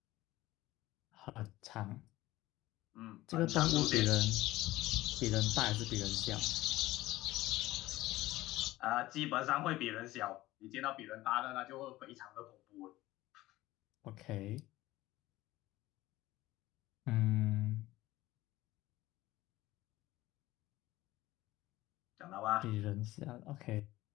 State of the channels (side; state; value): right; quieter; 17.2 dB